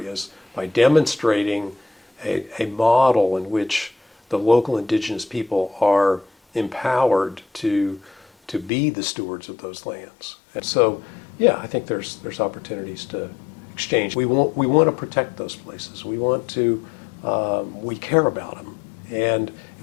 by demonstrating a model in which the local indigenous people are empowered to be the stewards of those lands. And so, yeah, I think there's opportunities to exchange. We want to protect those places. We care about them. And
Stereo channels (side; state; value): right; drops out; at 8.7 s